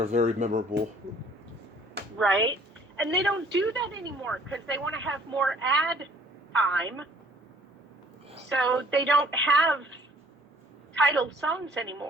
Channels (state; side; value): normal; both; correlation 0.57